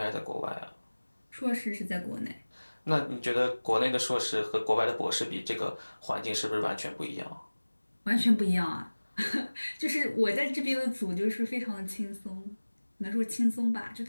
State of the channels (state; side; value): inverted; both; correlation -1.00